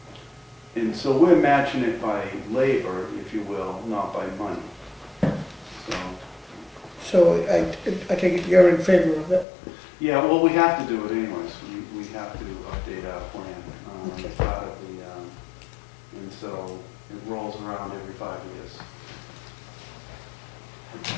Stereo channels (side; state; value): right; drops out; at 9.5 s